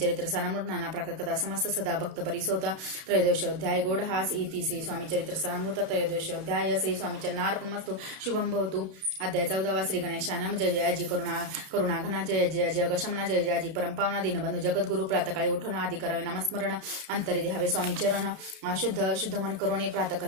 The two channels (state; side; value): late; left; 32 ms